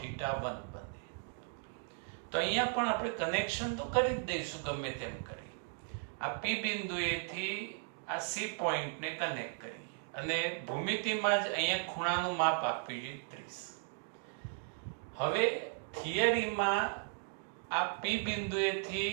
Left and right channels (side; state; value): left; silent; 53 dB below the other